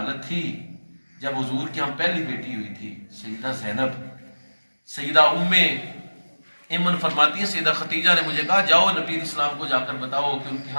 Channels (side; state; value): both; inverted; correlation -1.00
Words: تھی جب حضور کی ہم پہلی بیٹی ہوئی تھی سیدہ زینب۔ سیدہ ام ایمن فرماتی ہیں سیدہ ختیجہ نے مجھے کہا جاؤ نبی علیہ السلام کو جا کر بتاؤ کہ ان کے